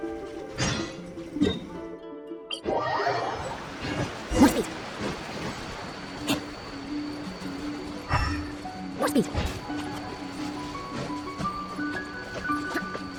More speed. More speed.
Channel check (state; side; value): identical; both; correlation 1.00